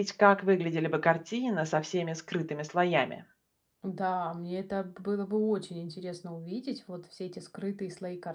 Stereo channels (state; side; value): identical; both; correlation 1.00